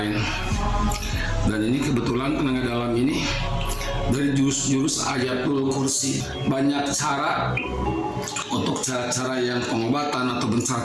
Dan ini kebetulan tenaga dalam ini dari jurus Ayatul Kursi. Banyak cara untuk cara-cara yang pengobatan atau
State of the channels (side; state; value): both; identical; correlation 1.00